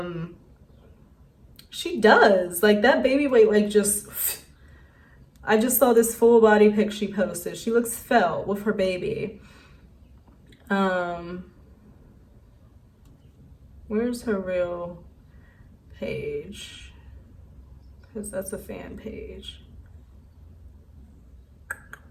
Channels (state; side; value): identical; both; correlation 1.00